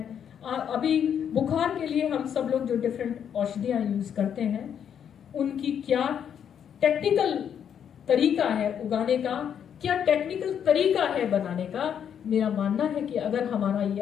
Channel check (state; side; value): quieter; right; 8.5 dB